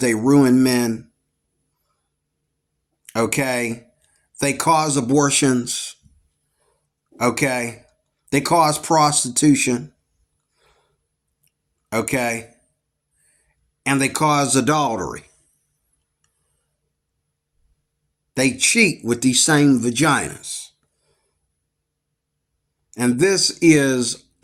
ruin men. Okay? They cause abortions. Okay? They cause prostitution. Okay? And they cause adultery. They cheat with these same vaginas. And this is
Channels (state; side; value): identical; both; correlation 1.00